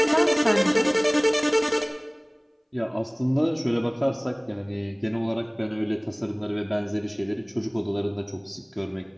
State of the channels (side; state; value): both; identical; correlation 1.00